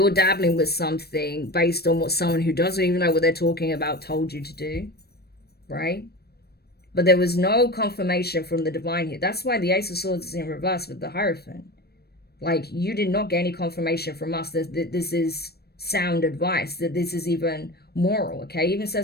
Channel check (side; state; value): right; late; 0.47 ms